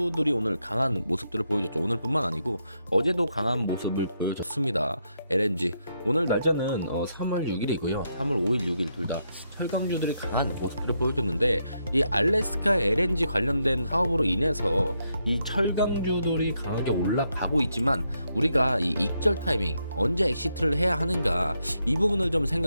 오늘 강한 모습들을 보여줬죠. 오늘뿐만 아니고 어제도 강한 모습을 보여줬습니다. LNG 오늘 날짜는 3월 6일이고요. 3월 5일, 6일 둘 다 철강주들이 강한 모습들을 보여줬는데 이 알래스카 LNG 관련된 사업으로 인해서 이 철강주들이 강하게 올라가고 있지만 우리가 이 익절 타이밍 언제 엑시트를 해야 하는가 이 부분을 좀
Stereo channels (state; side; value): inverted; both; correlation -0.80